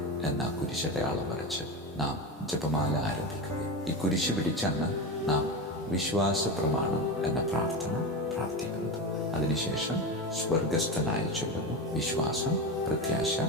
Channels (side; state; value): both; normal; correlation 0.20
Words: എന്ന കുരിശടയാളം വരച്ച് നാം ജപമാല ആരംഭിക്കുകയും ഈ കുരിശ് പിടിച്ചാണ് നാം വിശ്വാസ പ്രമാണം എന്ന പ്രാർത്ഥന പ്രാർത്ഥിക്കുന്നത്. അതിനുശേഷം സ്വർഗസ്ഥനായി ചൊല്ലുന്നു വിശ്വാസം, പ്രത്യാശ,